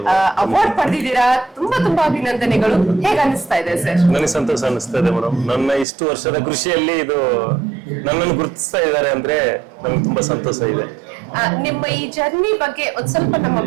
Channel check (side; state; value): left; drops out; at 5.9 s